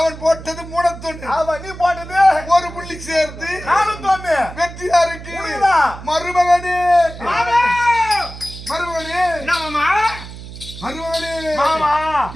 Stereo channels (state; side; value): noise; right; hum, 13 dB below the sound